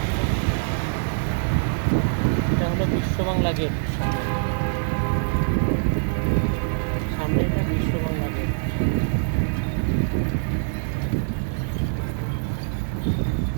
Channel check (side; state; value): left; silent; digital silence